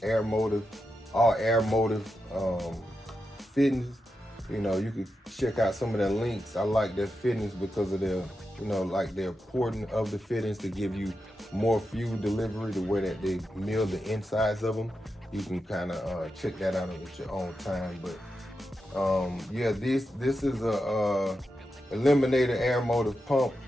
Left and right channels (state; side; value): normal; both; correlation 0.88